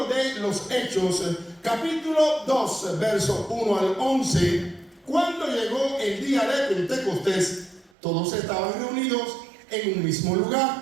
de los Hechos, capítulo 2, versos 1 al 11, cuando llegó el día de Pentecostés, todos estaban reunidos en un mismo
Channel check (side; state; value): left; drops out; at 7.9 s